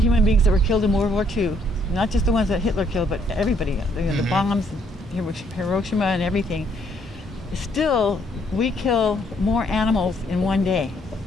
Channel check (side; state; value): both; normal; correlation 0.68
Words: beings that were killed in World War II, not just the ones that Hitler killed, but everybody, you know, the bombs, Hiroshima and everything, still we kill more animals in one day.